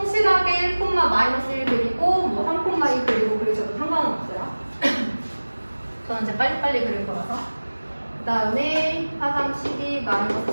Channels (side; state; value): both; inverted; correlation -1.00